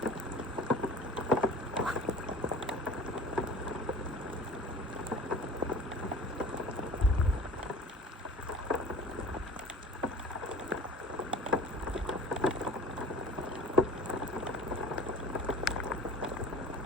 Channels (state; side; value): normal; both; correlation 0.43